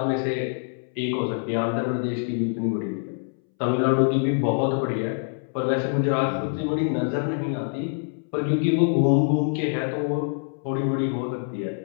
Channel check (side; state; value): right; silent; 62 dB below the other